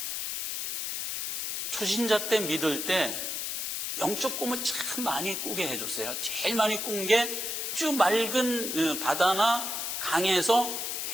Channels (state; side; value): noise; left; hiss, 2 dB below the sound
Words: 초신자 때 믿을 때 영적 꿈을 참 많이 꾸게 해줬어요. 제일 많이 꾼 게 쭉 맑은 바다나 강에서